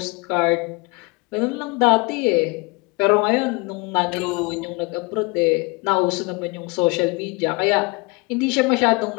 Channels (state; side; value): quieter; right; 28.2 dB